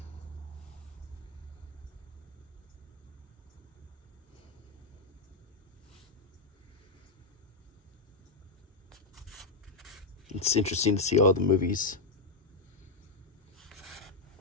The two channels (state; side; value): quieter; right; 3.8 dB